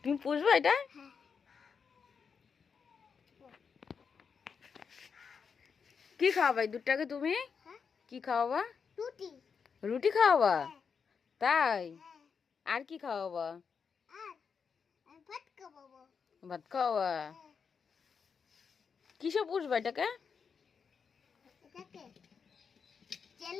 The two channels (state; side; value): quieter; right; 6.1 dB